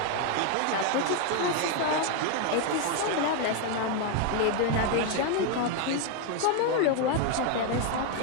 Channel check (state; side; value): different; both; correlation 0.01